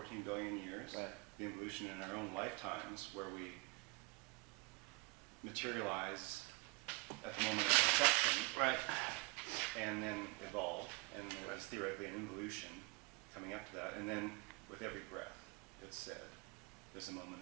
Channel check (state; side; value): quieter; left; 26.9 dB